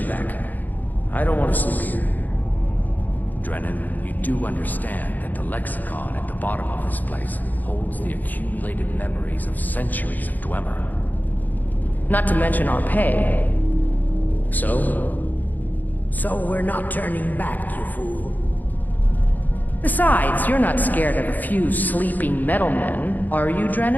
back. I don't want to sleep here. Drennan, you do understand that the lexicon at the bottom of this place holds the accumulated memories of centuries of Dwemer. Not to mention our pay. So? So we're not turning back, you fool. Besides, you're not scared of a few sleeping metalmen, are you,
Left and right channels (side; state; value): right; late; 0.084 ms